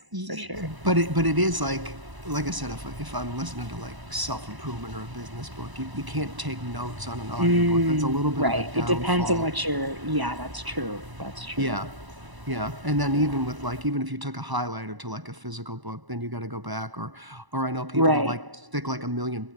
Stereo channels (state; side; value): late; left; 1.0 ms